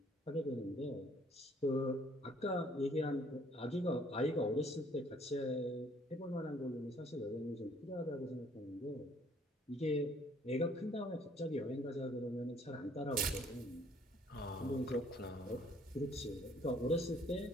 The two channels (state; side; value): normal; both; correlation 0.61